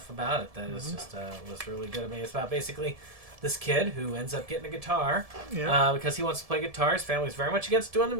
about it. That is just was really good. I mean, it's about basically this kid who ends up getting a guitar because he wants to play guitar. His family's very much against doing the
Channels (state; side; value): late; left; 1.7 ms